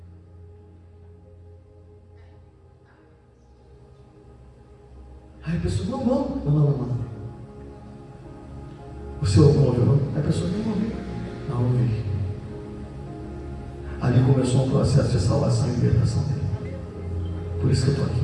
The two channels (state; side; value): identical; both; correlation 1.00